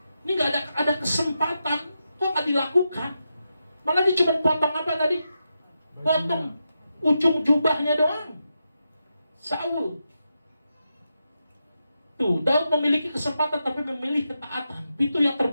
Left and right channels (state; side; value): inverted; both; correlation -0.87